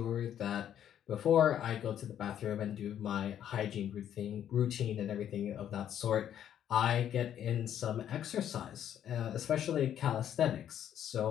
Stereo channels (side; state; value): right; quieter; 10.2 dB